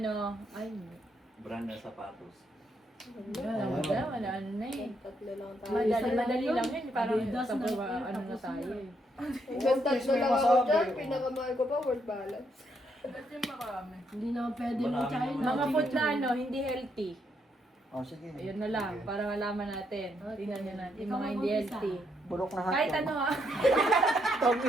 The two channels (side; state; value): both; normal; correlation 0.76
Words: ay, Brand ng sapatos. wala na eh. Tatlo lang tayo. Madali lang yun. Parang Adidas sa na ano tapos na tayo eh. Hanggang tatlo lang ako dyan. Pinakamahal ko pa, world balance. Ba't yung marami? Hindi naman pwede Marami mo China. Mga food na ano, hindi healthy. Oh, sige. Ayun na lang, para malaman natin. Tingnan nyo natin, yung Ikaw mga hindi mag-umpisa. healthy. Bulok na hotdog. Kahit ano ha.